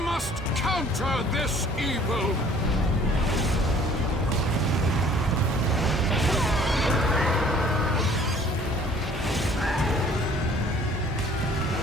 counter this evil!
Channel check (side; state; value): both; normal; correlation 0.54